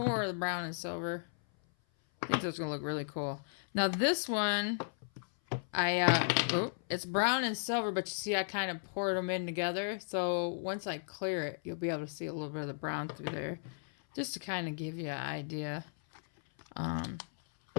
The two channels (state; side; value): silent; right; 54 dB below the other